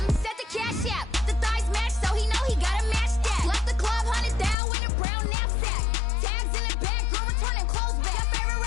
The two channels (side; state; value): right; drops out; at 4.5 s